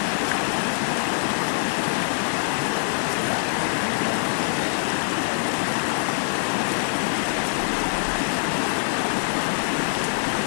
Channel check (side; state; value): right; silent; digital silence